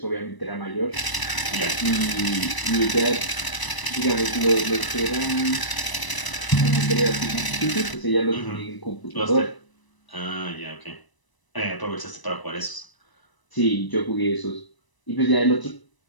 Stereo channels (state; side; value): late; right; 1.0 ms